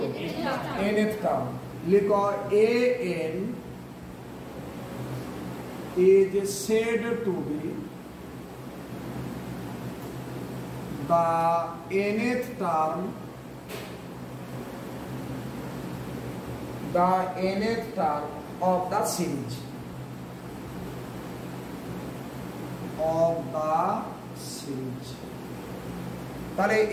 nth টার্ম। লিখো an is said to be the nth term, the nth term of the series, of the series। তাহলে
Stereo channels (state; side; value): identical; both; correlation 1.00